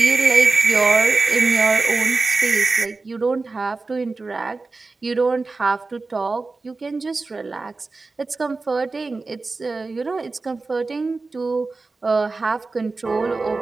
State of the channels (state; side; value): quieter; left; 3.7 dB